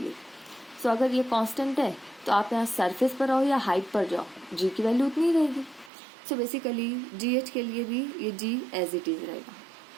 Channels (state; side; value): drops out; left; at 5.9 s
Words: सो अगर ये कांस्टेंट है तो आप यहाँ सरफेस पर रहो या हाइट पर जाओ, g की वैल्यू उतनी रहेगी. सो बेसिकली gh के लिए भी ये g एज इट इज रहेगा.